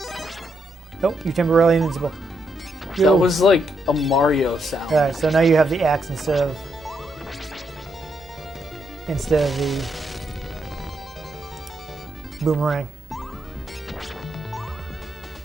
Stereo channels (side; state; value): both; normal; correlation 0.79